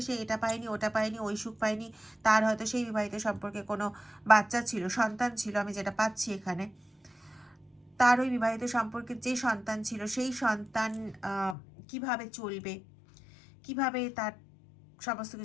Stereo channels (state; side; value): drops out; right; at 11.6 s